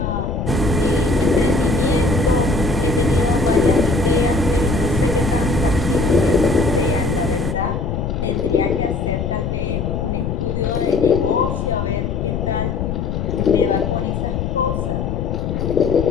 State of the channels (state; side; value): noise; left; rumble, 2 dB below the sound